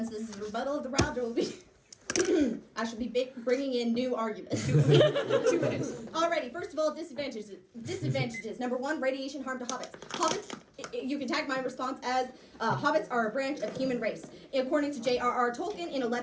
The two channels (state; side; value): identical; both; correlation 1.00